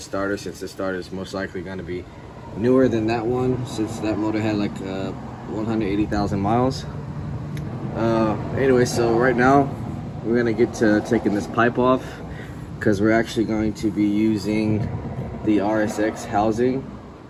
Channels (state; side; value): identical; both; correlation 1.00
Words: starter, since this starter is most likely gonna be newer than that one, since that motor had like 180,000 miles. Anyway, so right now we're gonna get to taking this pipe off, because we're actually going to be using the Rsx housing